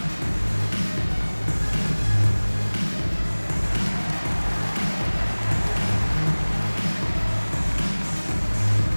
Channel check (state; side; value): inverted; both; correlation -1.00